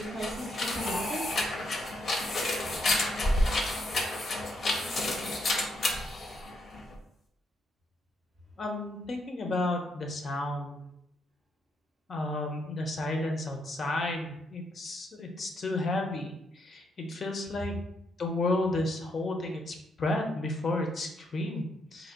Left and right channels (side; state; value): both; normal; correlation 0.77